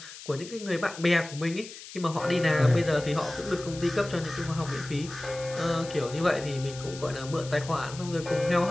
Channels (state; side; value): noise; left; hiss, 14 dB below the sound